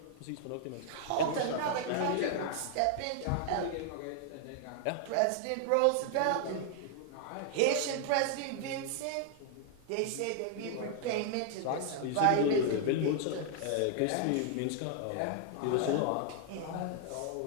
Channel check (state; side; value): different; both; correlation 0.00